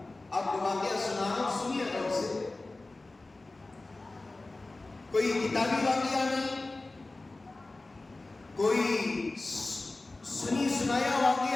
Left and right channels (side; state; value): right; quieter; 3.1 dB